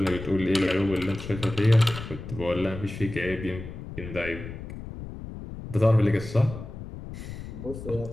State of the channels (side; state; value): left; noise; rumble, 11 dB below the sound